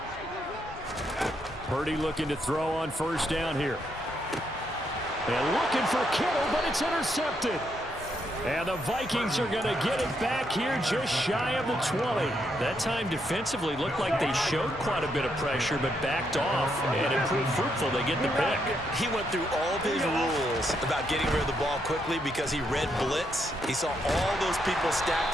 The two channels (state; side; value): normal; both; correlation 0.78